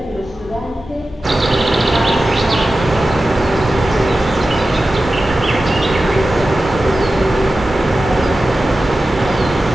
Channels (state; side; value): normal; both; correlation 0.94